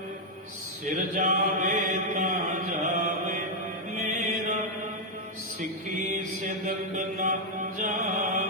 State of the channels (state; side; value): normal; both; correlation -0.02